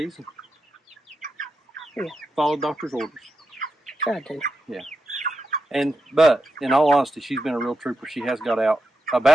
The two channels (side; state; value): both; normal; correlation 0.87